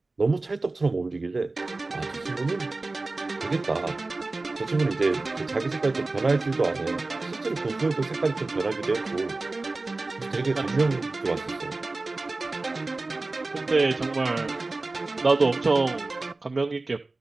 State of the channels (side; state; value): left; quieter; 3.3 dB